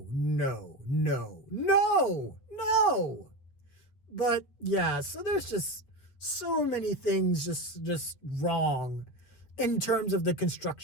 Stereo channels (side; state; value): right; late; 8.0 ms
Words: no, no, no, no. But yeah, so there's just so many things just wrong in terms of the